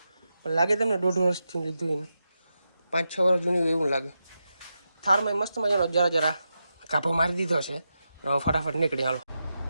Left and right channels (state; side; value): inverted; both; correlation -0.88